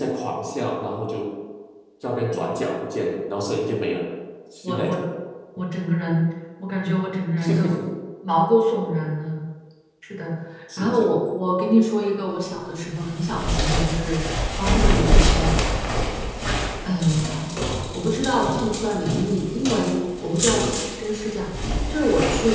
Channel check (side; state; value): both; identical; correlation 1.00